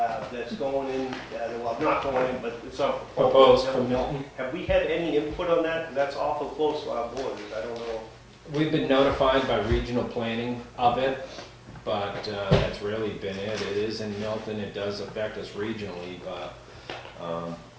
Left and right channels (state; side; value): identical; both; correlation 1.00